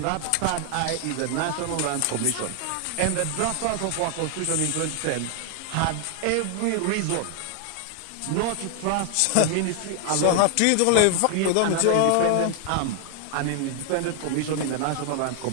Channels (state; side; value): different; both; correlation 0.00